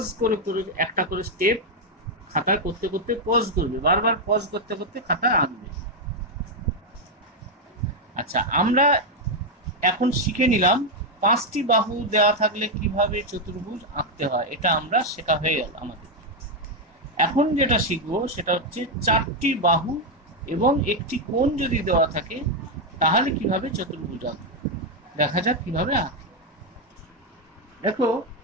করে করে একটা করে স্টেপ খাতায় করতে করতে পজ করবে, বারবার পজ করতে করতে খাতায় আঁকবে। আচ্ছা, আমরা এখন শিখে নিলাম 5টি বাহু দেওয়া থাকলে কিভাবে চতুর্ভুজ আঁকতে হয়, এটা আমরা শেখা হয়ে গেল আমাদের। এখন যেটা শিখবো সেটা হচ্ছে 4টি বাহু এবং একটি কোণ যদি দেওয়া থাকে তাহলে কিভাবে চতুর্ভুজ আঁকবে। দেখা যাক কিভাবে আঁকে। দেখো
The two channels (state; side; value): normal; both; correlation 0.03